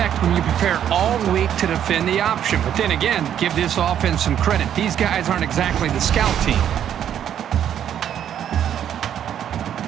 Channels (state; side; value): quieter; left; 9.8 dB